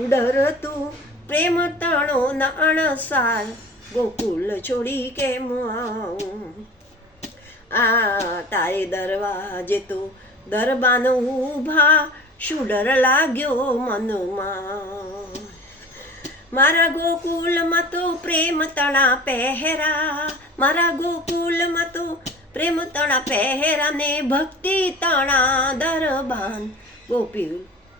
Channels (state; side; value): normal; both; correlation 0.41